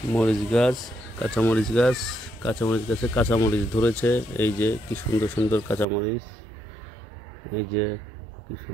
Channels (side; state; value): left; drops out; at 5.9 s